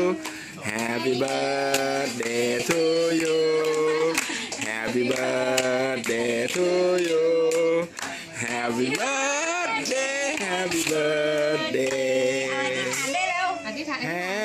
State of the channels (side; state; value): both; identical; correlation 1.00